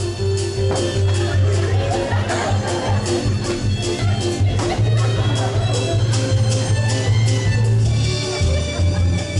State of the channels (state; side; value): identical; both; correlation 1.00